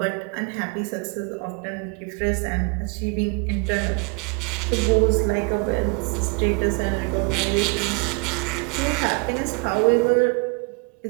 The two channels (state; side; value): quieter; left; 33.2 dB